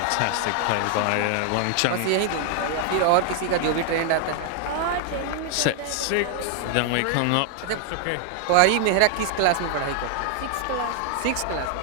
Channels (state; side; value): different; both; correlation 0.00